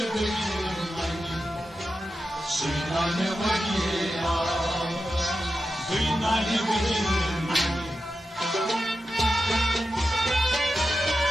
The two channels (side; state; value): both; normal; correlation 0.91